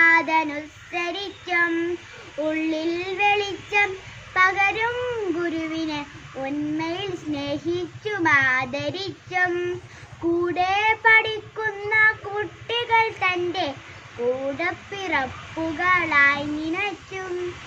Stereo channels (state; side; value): identical; both; correlation 1.00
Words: ഉള്ളിൽ വെളിച്ചം പകരും ഗുരുവിനെ ഉന്മയിൽ സ്നേഹിച്ചും ആദരിച്ചും കൂടെ പഠിക്കുന്ന കുട്ടികൾ തൻ്റെ കൂടപ്പിറപ്പുകളായി നിനച്ചും